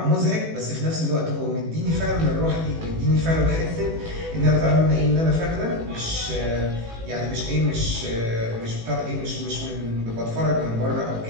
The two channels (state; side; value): late; left; 18 ms